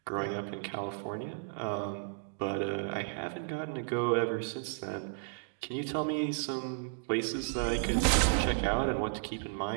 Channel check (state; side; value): silent; left; digital silence